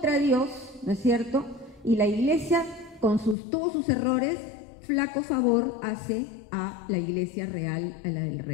Dios, ¿no es cierto? Y la Iglesia, con todos sus errores, flaco favor hace a la Iglesia real, a la del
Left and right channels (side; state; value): right; drops out; at 3.4 s